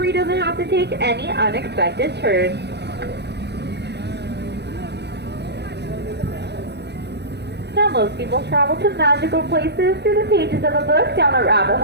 doesn't have to take any unexpected turns. Now, most people travel to magical places through the pages of a book, down a rabbit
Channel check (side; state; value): left; late; 0.49 ms